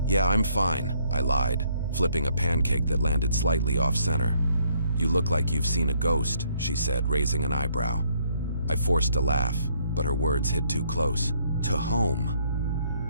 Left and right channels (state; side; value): inverted; both; correlation -0.68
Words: "Yeah, I'm fine," I lied, flipping a pancake that landed slightly off-center. "You look like you've seen a ghost," she said, raising an eyebrow. I forced a laugh, but her words hit too close to home.